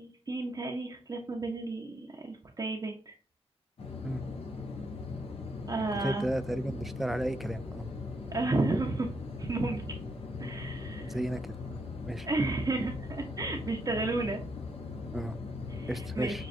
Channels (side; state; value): both; normal; correlation 0.77